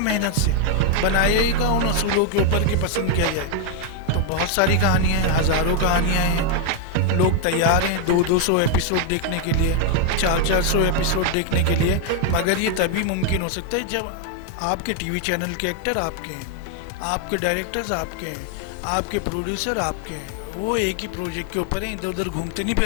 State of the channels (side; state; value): both; different; correlation 0.00